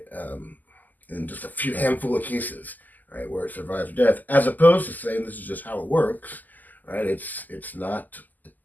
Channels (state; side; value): late; right; 0.083 ms